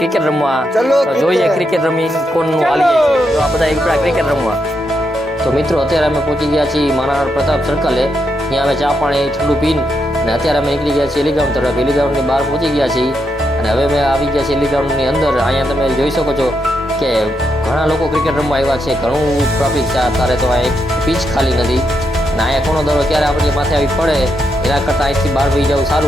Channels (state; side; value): normal; both; correlation 0.82